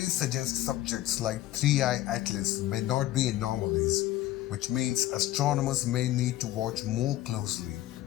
suggest subjects like 3I Atlas may not be anomalies, which means astronomers may need to watch more closely,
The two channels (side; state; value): right; quieter; 14.9 dB